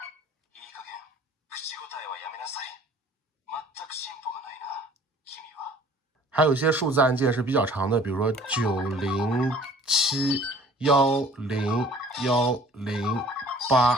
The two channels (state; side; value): normal; both; correlation 0.51